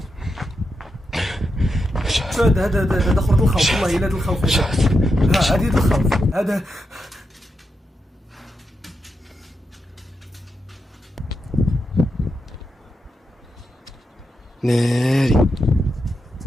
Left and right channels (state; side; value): normal; both; correlation 0.86